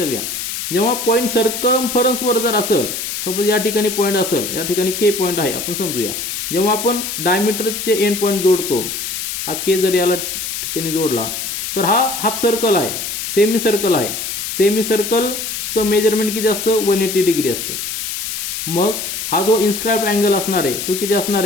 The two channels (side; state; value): left; noise; hiss, 4 dB below the sound